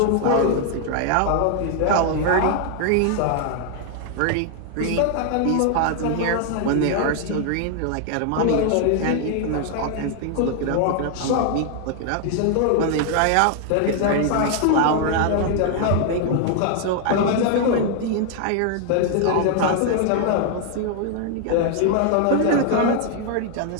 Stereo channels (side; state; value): both; different; correlation 0.00